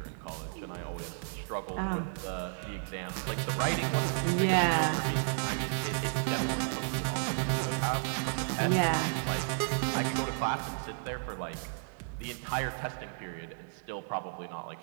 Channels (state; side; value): silent; left; digital silence